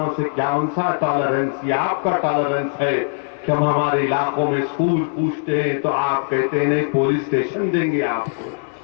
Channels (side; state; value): right; silent; 65 dB below the other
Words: से क्या उनसा टॉलरेंस या आपका टॉलरेंस है कि हम हमारे इलाकों में स्कूल पूछते हैं तो आप कहते हैं नहीं पुलिस स्टेशन देंगे आपको।